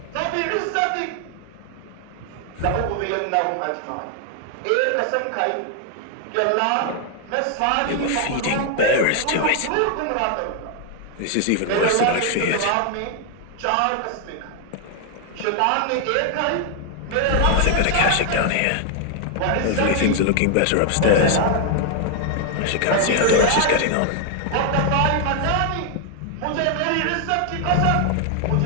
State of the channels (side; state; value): both; different; correlation 0.00